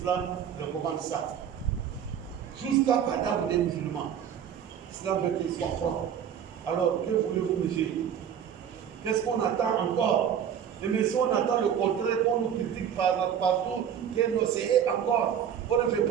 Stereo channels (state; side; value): quieter; left; 8.8 dB